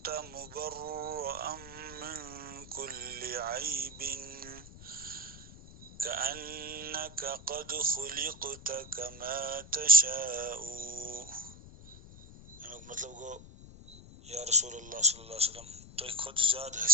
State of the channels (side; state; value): left; noise; rumble, 17 dB below the sound